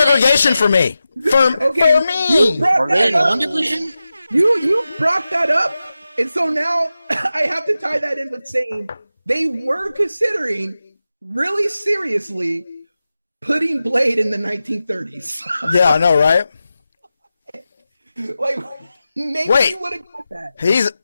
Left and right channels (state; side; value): inverted; both; correlation -0.93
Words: for me. For me. Are they in one division? You brought that up, and so now I have to tie that in with saying they were considering really seriously putting Blade in the 1930s. Yeah, I know, right? Like, maybe you would have got that.